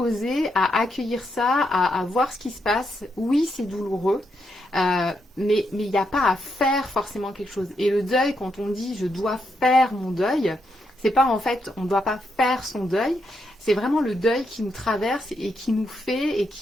à accueillir ça, à voir ce qui se passe. Oui, c'est douloureux. Mais il n'y a pas à faire forcément quelque chose. Et le deuil, quand on dit je dois faire mon deuil, c'est pas en fait on ne doit pas faire son deuil, c'est vraiment le deuil qui nous traverse et qui nous fait et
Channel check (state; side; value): normal; both; correlation 0.81